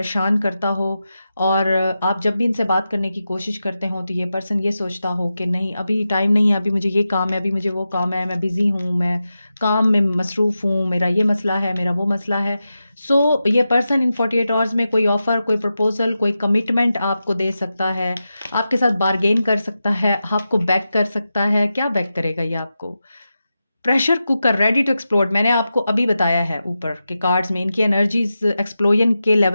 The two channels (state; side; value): inverted; both; correlation -0.91